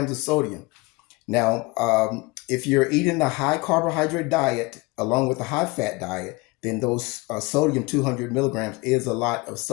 of sodium. Now, if you're eating a high carbohydrate diet along with a high fat diet, then those sodium 200 milligrams is a lot of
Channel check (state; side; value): quieter; right; 24.1 dB